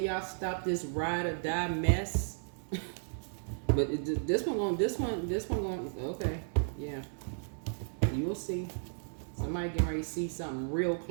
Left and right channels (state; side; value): silent; left; 55 dB below the other